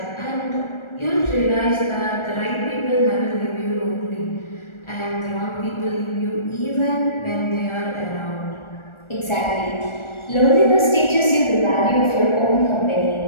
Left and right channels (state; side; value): late; right; 1.4 ms